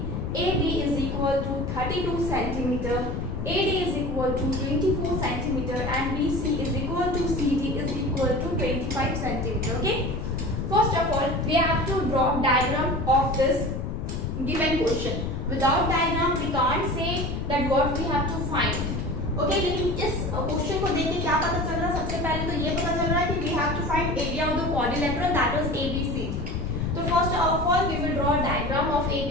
AB is equal to 32 centimeter, AD is equal to 24 centimeter and BC is equal to CD is equal to 25 centimeter. Okay. First of all, we have to draw diagram of this given question. Without diagram, we can't say that what we have to find. Okay, लेकिन इस question को देख के क्या पता चल रहा है? सबसे पहले तो ये पता चल रहा है कि we have to find area of the quadrilateral, that is ABCD. So first of all, we will draw a diagram of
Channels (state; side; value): noise; left; rumble, 3 dB below the sound